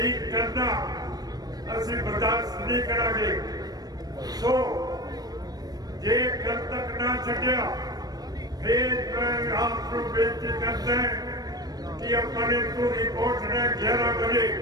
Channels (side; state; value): left; late; 0.19 ms